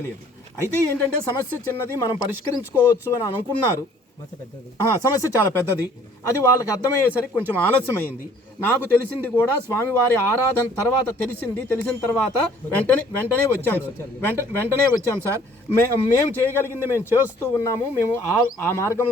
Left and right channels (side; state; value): both; normal; correlation 0.57